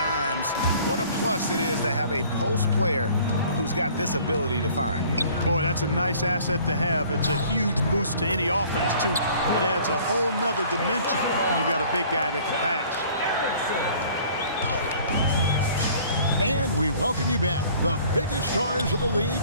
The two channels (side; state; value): both; inverted; correlation -0.53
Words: What a plus it is to have a post player who's got this ability to find. Boy, that's a nice asset to have. It's a huge boost to any offense, too. It adds a whole nother dimension when you've got a big guy that can pass. And we welcome you back. The biggest stars of the league